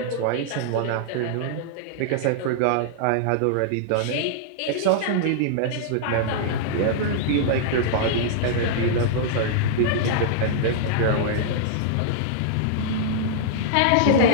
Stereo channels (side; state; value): both; different; correlation -0.02